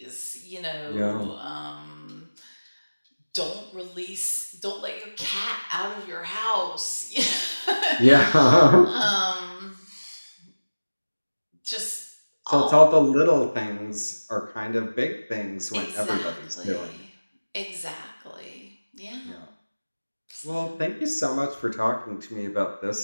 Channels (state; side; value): inverted; both; correlation -1.00